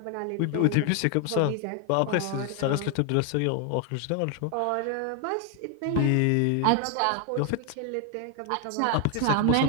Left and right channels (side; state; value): both; different; correlation 0.00